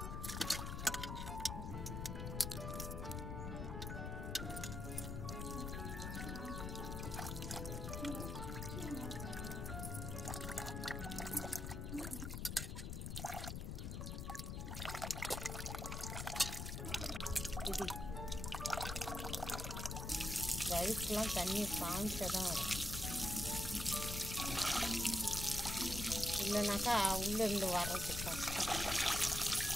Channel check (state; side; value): noise; left; rumble, 4 dB below the sound